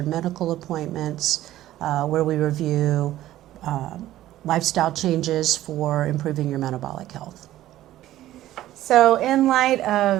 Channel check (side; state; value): left; quieter; 14.2 dB